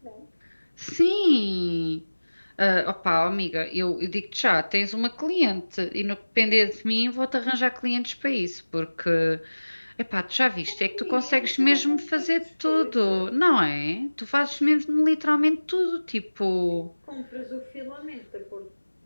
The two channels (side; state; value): both; inverted; correlation -1.00